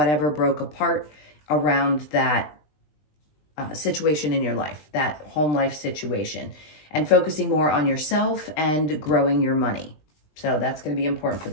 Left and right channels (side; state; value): right; late; 20 ms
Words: broke apart around that situation in your life, that home life situation, and focusing more on yourself and growing your money. So that's going to be important for